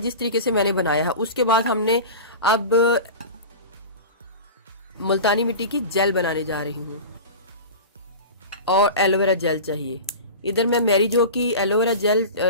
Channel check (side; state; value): both; inverted; correlation -0.31